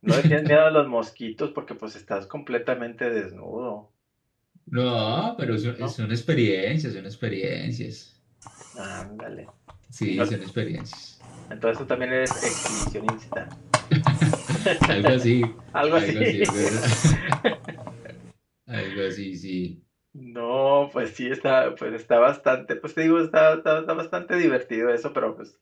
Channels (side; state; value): both; identical; correlation 1.00